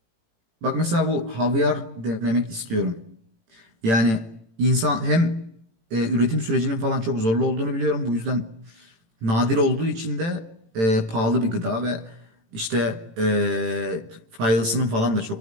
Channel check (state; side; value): late; left; 18 ms